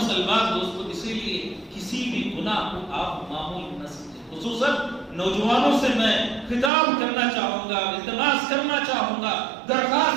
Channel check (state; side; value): drops out; left; at 6.7 s